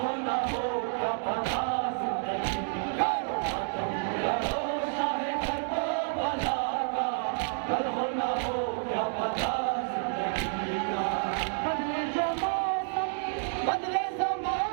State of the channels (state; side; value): silent; left; digital silence